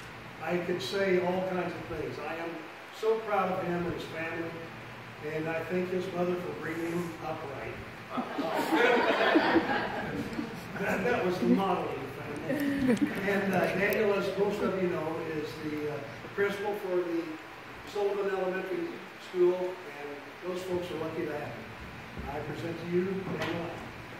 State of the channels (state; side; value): identical; both; correlation 1.00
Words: I could say all kinds of things. I am so proud of him and his family, and I thank his mother for bringing him up right. That was the model of the family. And Daniel, as most of you know, is the principal for the Sullivan Elementary School, and those folks are lucky to have him. I present to you Daniel.